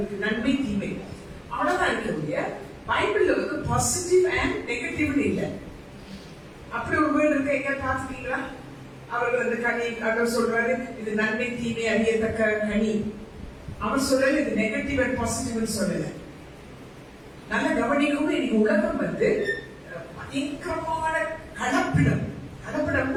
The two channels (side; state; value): both; identical; correlation 1.00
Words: நன்மை தீமை அவ்வளவுதான் இருக்க. பைபிள்ல பாசிட்டிவ் அண்ட் நெகட்டிவ்னு இல்லை. அப்படி ஒரு வேர்டு இருக்கு, எங்க பாத்துட்டீங்களா? அவர்கள் அந்த கனி அவர் சொல்றாரு, இது நன்மை தீமை அறியத்தக்க கனி. அவர் சொல்லல இது நெகட்டிவ் அண்ட் பாசிட்டிவ் சொல்லல. நல்ல கவனிக்கும். இன்னைக்கு உலகம் பயங்கரமான கலப்பிடம்.